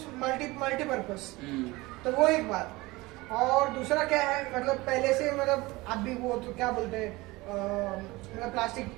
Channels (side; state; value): left; quieter; 21.4 dB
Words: मल्टीपर्पज। तो वो एक बात। और दूसरा क्या है, मतलब पहले से मतलब अभी वो तो क्या बोलते हैं, मतलब प्लास्टिक